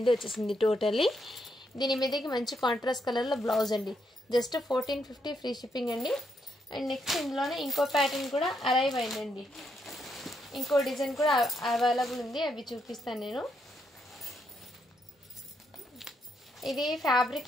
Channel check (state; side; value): normal; both; correlation 0.78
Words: వచ్చేసింది టోటల్లీ. దీని మీదకి మంచి కాంట్రాస్ట్ కలర్లో బ్లౌజ్ అండి. జస్ట్ 1450 ఫ్రీ షిప్పింగ్ అండి. అండ్ నెక్స్ట్ ఇందులోనే ఇంకో ప్యాటర్న్ కూడా అరైవ్ అయిందండి. ఇంకో డిజైన్ కూడా అవైలబుల్ ఉంది, అవి చూపిస్తాను నేను. ఇది ఫ్యాబ్రిక్